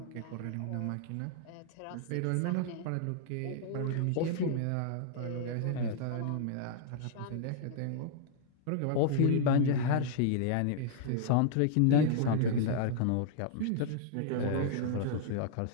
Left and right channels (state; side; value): different; both; correlation -0.01